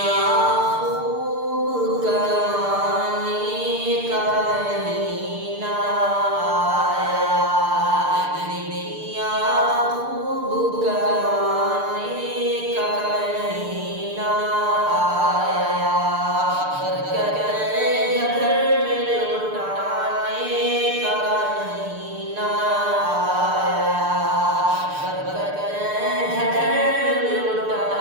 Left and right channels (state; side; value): late; left; 6.7 ms